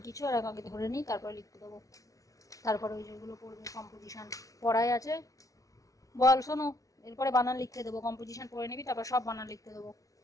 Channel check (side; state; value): right; late; 0.17 ms